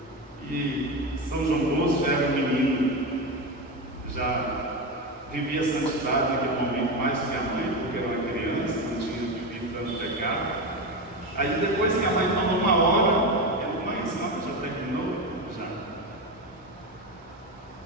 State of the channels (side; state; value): both; normal; correlation 0.17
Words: E São João Bosco já era um menino, já vivia a santidade naquele momento mais que a mãe, porque era uma criança, não tinha vivido tanto pecado. Aí depois que a mãe falou uma hora, ele: mãe, a senhora já terminou? Já.